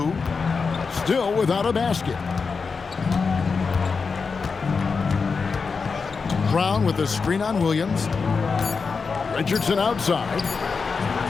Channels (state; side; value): quieter; right; 5.0 dB